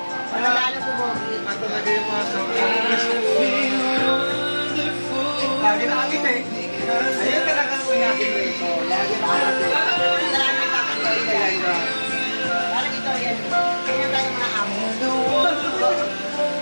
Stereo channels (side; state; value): both; inverted; correlation -1.00